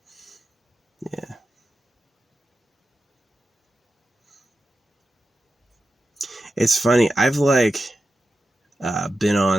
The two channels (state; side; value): normal; both; correlation 0.91